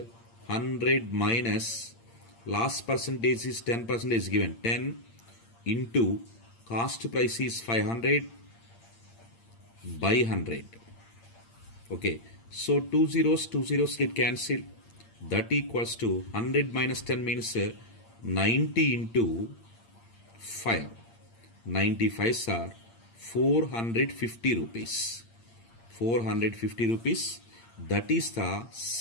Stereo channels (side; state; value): right; late; 8.7 ms